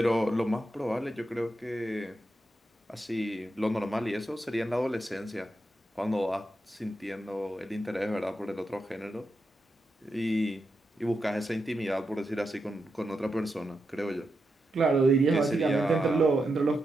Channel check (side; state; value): both; normal; correlation 0.86